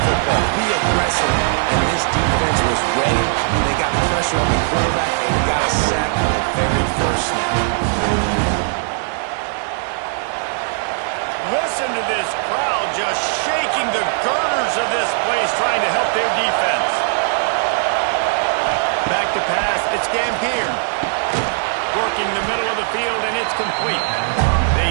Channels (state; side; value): silent; left; digital silence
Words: football, be aggressive, and this defense was ready, and they got pressure on the quarterback and got a sack on the very first snap. Listen to this crowd just shaking the girders of this place, trying to help their defense. Back to pass, it's Dampier. Working the middle of the field, and it's complete.